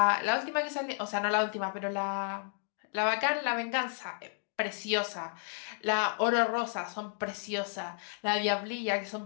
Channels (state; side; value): silent; right; 56 dB below the other